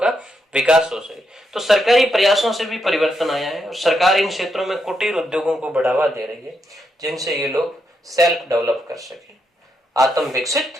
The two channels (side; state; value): both; normal; correlation 0.81